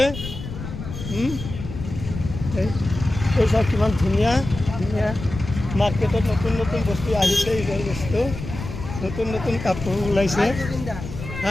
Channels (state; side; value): noise; left; rumble, 9 dB below the sound